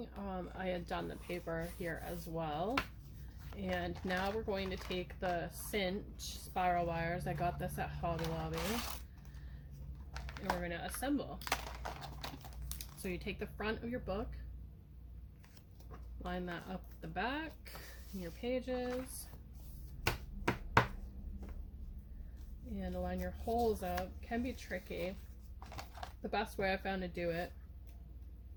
I had done the paper here as well. And now we're going to take the cinch spiral wires. I got this at Hobby Lobby. And we're going to assemble. So you take the front of your book, line that up the back, your pages, and line your holes up. Can be tricky. The best way I found to do it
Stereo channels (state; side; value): identical; both; correlation 1.00